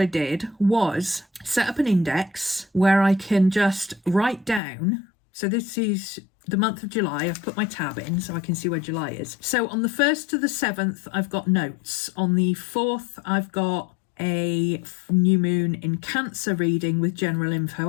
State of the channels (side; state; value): right; drops out; at 4.6 s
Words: I did was set up an index where I can just write down. So this is the month of July. I've put my tab in so I can see where July is. So on the 1st to the 7th, I've got notes. On the 4th, I've got a new moon in Cancer reading with general info